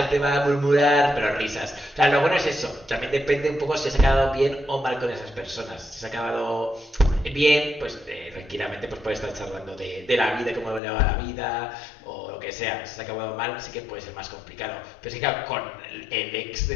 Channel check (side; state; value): right; drops out; at 10.8 s